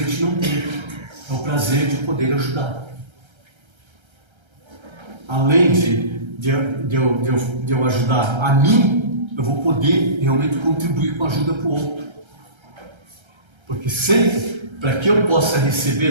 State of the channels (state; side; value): late; left; 1.3 ms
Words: gente não tem. É o prazer de poder ajudar. Além de eu ajudar a mim, eu vou poder realmente contribuir com a ajuda para o outro. Porque sempre, para que eu possa